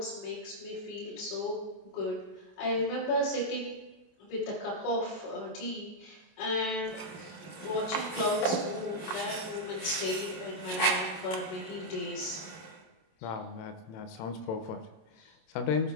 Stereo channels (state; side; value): late; right; 27 ms